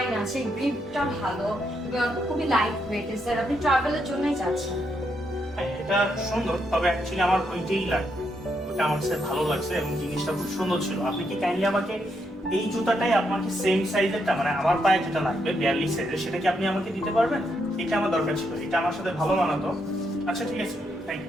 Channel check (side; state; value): both; normal; correlation 0.79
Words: আছে, গ্রিপটা ভালো এবং খুবই লাইট ওয়েট। স্যার, আপনি ট্রাভেলের জন্যই যাচ্ছেন। হ্যাঁ, এটা সুন্দর, তবে অ্যাকচুয়ালি আমার ওইটাই লাগবে। ওটা আমার কাছে ভালো লাগছে এবং জিনিসটা খুব সুন্দর ছিল। আপনি কি কাইন্ডলি আমাকে এই জুতাটাই আপনাকে সেম সাইজেরটা, মানে আমার পায়ে যেটা লাগবে 42 সাইজের, সেটা কি আপনি আমাকে দিতে পারবেন? এটা আমার দরকার ছিল, এটা আমার সাথে ভালো মানাতো। আচ্ছা ঠিক আছে, থ্যাংক